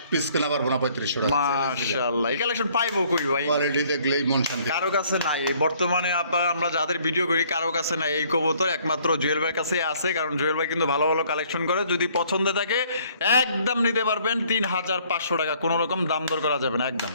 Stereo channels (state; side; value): inverted; both; correlation -0.61